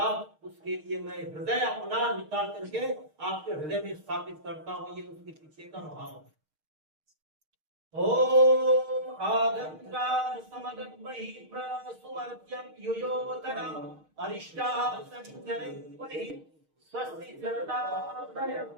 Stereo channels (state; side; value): late; left; 6.5 ms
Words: उसके लिए मैं हृदय अपना निकाल करके आपके हृदय में स्थापित करता हूँ। ये उसके पीछे का भाव है। ओम आगंत्रान समगन्महि प्रसुमर्त्यं युयोतरम् अरिष्टाः सञ्चरन्महि स्वस्ति चरतादयम्।